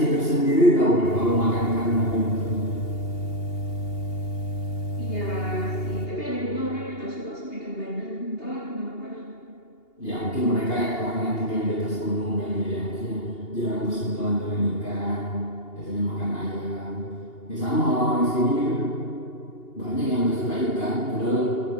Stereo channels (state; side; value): late; right; 2.8 ms